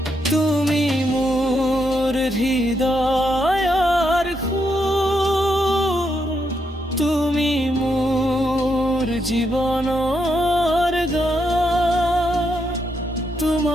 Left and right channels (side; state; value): both; normal; correlation 0.80